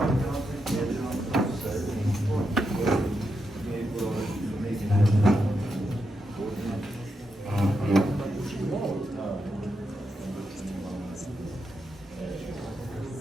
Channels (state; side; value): normal; both; correlation 0.84